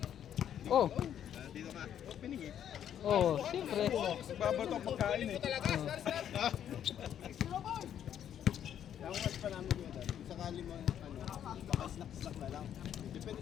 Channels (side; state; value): right; quieter; 9.8 dB